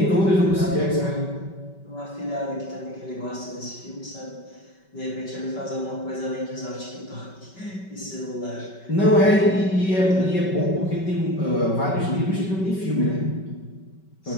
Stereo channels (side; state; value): right; late; 5.2 ms